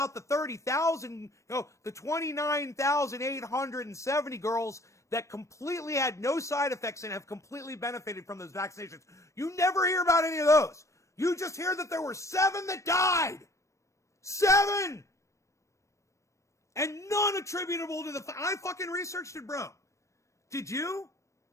the 30,000, the 29,870 girls that completely had no side effects and have completely benefited from those vaccinations. You never hear about any of those. You just hear that there were 7 that died. 7! And none attributable to I fucking researched it, bro. Did you?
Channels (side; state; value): right; late; 0.15 ms